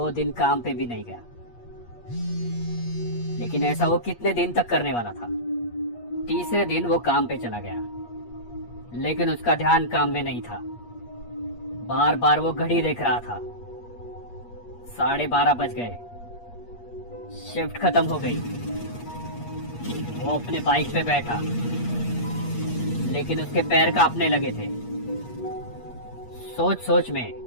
दिन काम पे भी नहीं गया, लेकिन ऐसा वो कितने दिन तक करने वाला था। तीसरे दिन वो काम पे चला गया, लेकिन उसका ध्यान काम में नहीं था। बार बार वो घड़ी देख रहा था। 12:30 बज गए। शिफ्ट खत्म हो गई। वो अपने बाइक पे बैठा, लेकिन उसके पैर कांपने लगे थे। सोच सोच में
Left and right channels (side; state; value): right; late; 8.4 ms